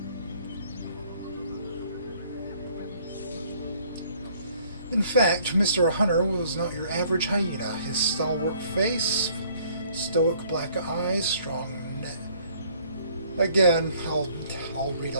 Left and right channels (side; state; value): both; inverted; correlation -0.60